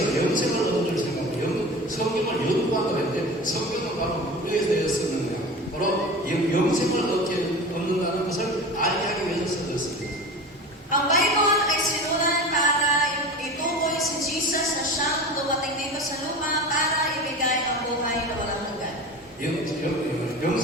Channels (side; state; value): both; normal; correlation 0.33